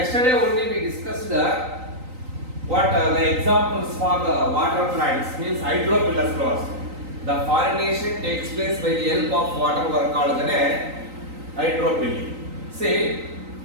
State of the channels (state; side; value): late; left; 3.9 ms